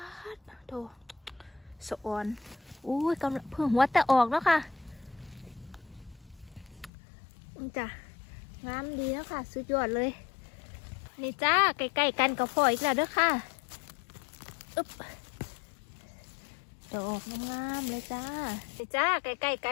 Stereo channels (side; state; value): right; drops out; at 6.9 s